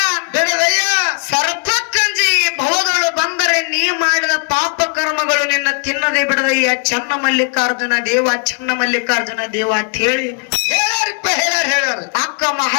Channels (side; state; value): right; quieter; 37.9 dB